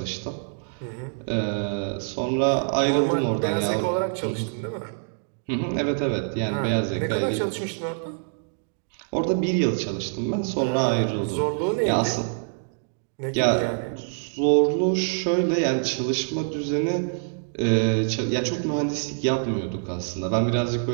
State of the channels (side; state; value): left; silent; digital silence